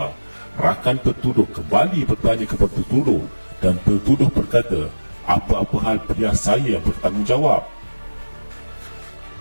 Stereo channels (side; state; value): both; inverted; correlation -1.00